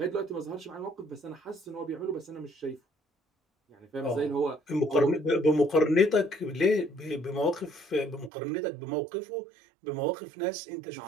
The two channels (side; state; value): left; drops out; at 8.3 s